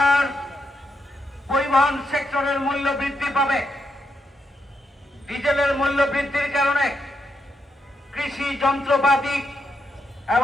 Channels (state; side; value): normal; both; correlation 0.82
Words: পরিবহন সেক্টরের মূল্য বৃদ্ধি পাবে। ডিজেলের মূল্য বৃদ্ধির কারণে কৃষি যন্ত্রপাতি